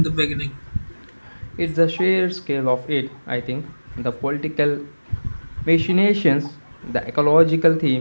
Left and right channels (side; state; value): both; inverted; correlation -1.00